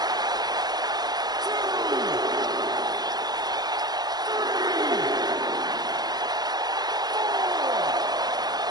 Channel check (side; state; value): left; late; 0.19 ms